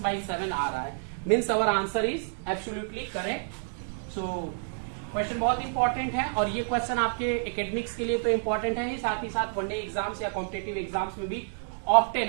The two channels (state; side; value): silent; left; digital silence